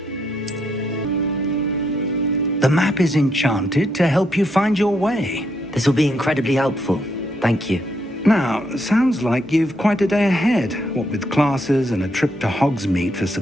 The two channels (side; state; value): both; normal; correlation 0.76